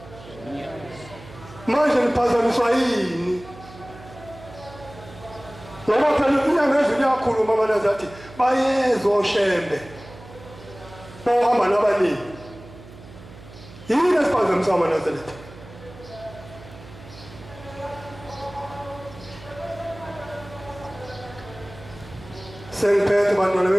manje niphazamiswa yini ngoba phela inyanga ezulu yakhuluma amanazi athi bayeza oShembe bohamba nabaningi yini esiphazamisa aManazaretha sengiphethe bantwana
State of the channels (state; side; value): noise; right; hum, 18 dB below the sound